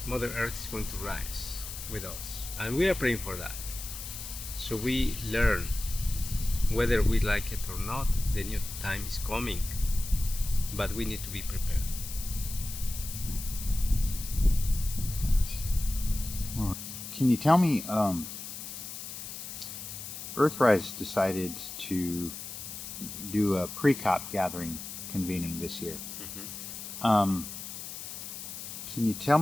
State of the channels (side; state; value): left; noise; hiss, 9 dB below the sound